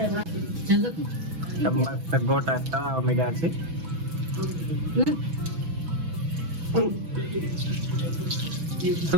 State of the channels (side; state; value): left; late; 6.1 ms